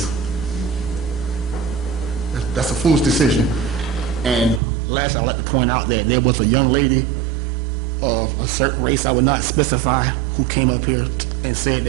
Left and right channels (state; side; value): drops out; left; at 4.6 s